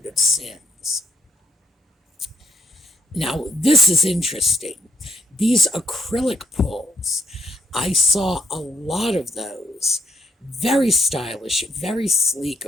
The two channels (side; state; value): both; normal; correlation 0.74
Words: of sins. Now, this is interesting. These acrylic pulls, I saw a lot of those. Very stylish, very sleek,